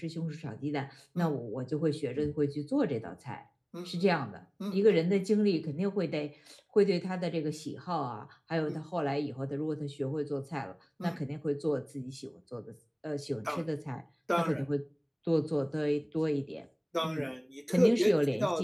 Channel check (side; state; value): both; identical; correlation 1.00